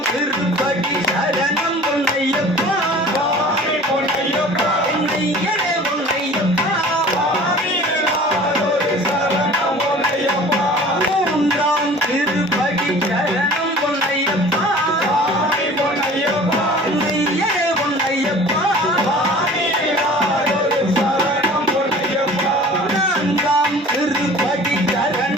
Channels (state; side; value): normal; both; correlation 0.45